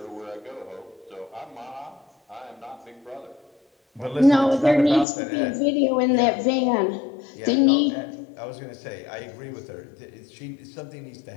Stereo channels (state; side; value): drops out; right; at 5.1 s